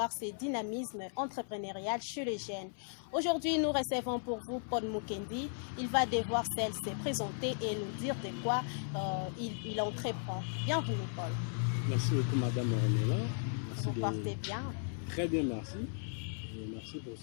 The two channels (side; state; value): right; silent; 54 dB below the other